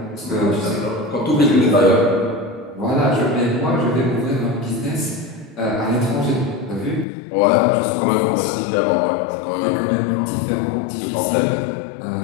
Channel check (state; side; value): drops out; right; at 7.1 s